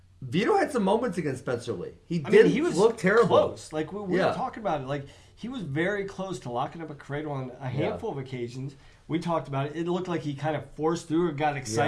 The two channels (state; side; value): identical; both; correlation 1.00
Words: Vito had some moments against Spencer Lee. He was look terrible. Close. Like we were talking about it. Like he was very close to locking up a cradle on a handful of occasions. We talked about it. It looked like he kind of forced through or got